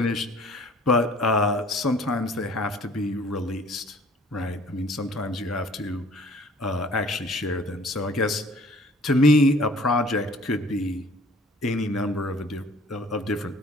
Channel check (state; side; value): normal; both; correlation 0.53